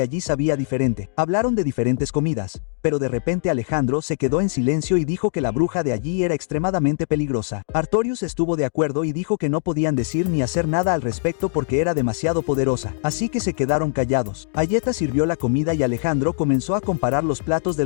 allí sabía diferente. Hablaron de diferentes comidas, pero de repente Alejandro se quedó en silencio y dijo que la bruja de allí era extremadamente peligrosa. Artorius estuvo de acuerdo y dijo que no podían decir ni hacer nada al respecto porque era demasiado poderosa, así que se quedaron callados. Ayeta sirvió la comida y Alejandro comenzó a comparar los platos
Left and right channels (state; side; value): silent; right; digital silence